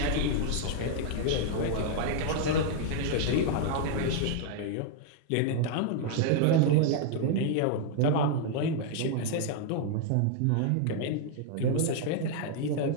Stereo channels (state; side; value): different; both; correlation 0.00